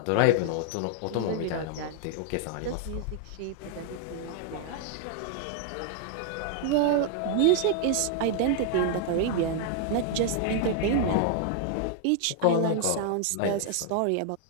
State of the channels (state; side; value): different; both; correlation 0.00